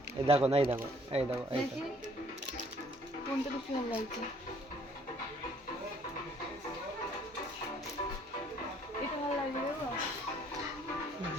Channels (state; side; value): normal; both; correlation 0.60